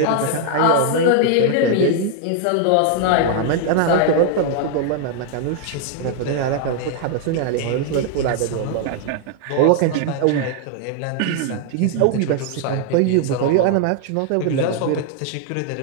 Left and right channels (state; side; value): different; both; correlation 0.00